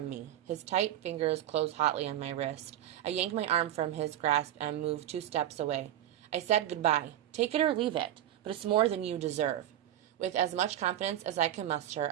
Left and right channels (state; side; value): quieter; left; 12.2 dB